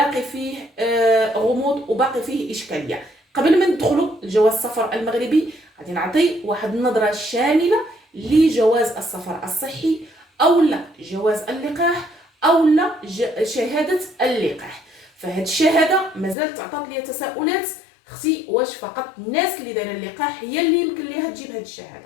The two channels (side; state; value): right; drops out; at 16.4 s